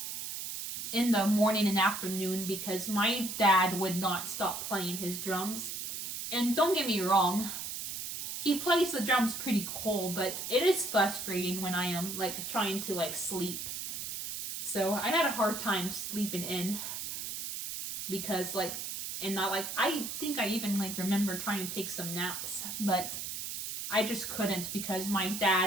in the morning and afternoon because my dad would not stop playing his drums. And don't get me wrong, he plays the drums pretty cool, but it is frustrating when I am, like, trying to, like, sleep. So I had a hard time sleeping in because, like, and not like, I think I even, like, remember trying to take some naps, but I just couldn't because my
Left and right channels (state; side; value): noise; right; hiss, 5 dB below the sound